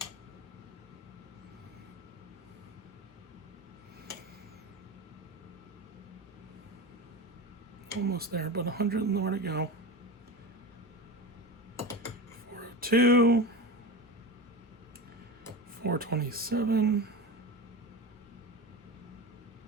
Almost there, but 100 more to go. 402. 427.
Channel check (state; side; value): normal; both; correlation 0.25